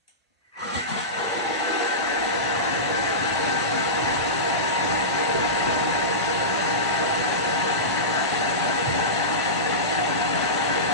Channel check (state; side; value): normal; both; correlation -0.18